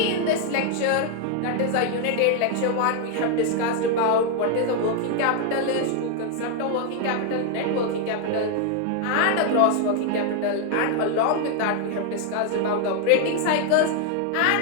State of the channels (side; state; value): both; different; correlation 0.00